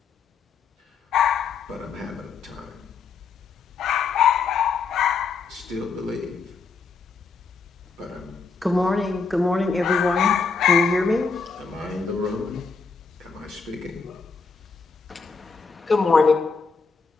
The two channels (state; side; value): quieter; right; 4.8 dB